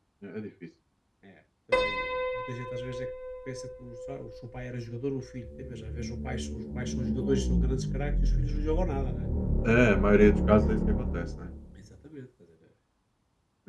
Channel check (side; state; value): both; identical; correlation 1.00